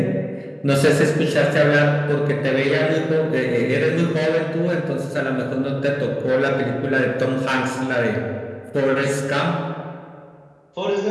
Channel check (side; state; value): both; identical; correlation 1.00